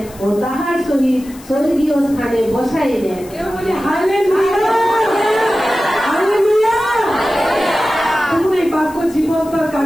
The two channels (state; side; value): noise; left; hiss, 21 dB below the sound